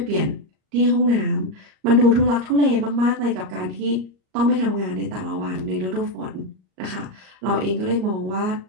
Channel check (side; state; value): left; late; 38 ms